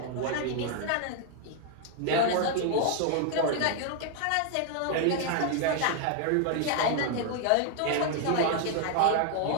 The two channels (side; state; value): both; different; correlation 0.00